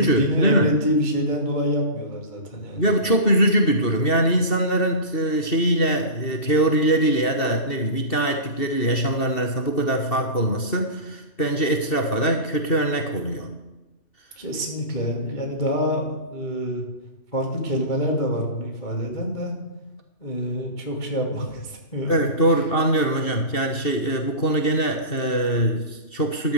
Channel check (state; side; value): late; right; 2.7 ms